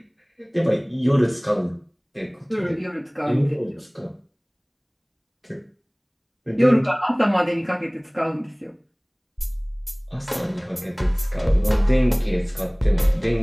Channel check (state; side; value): identical; both; correlation 1.00